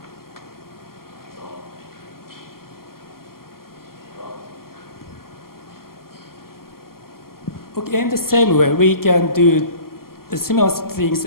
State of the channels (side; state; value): right; late; 0.92 ms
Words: Okay, in the same way, we can do similar things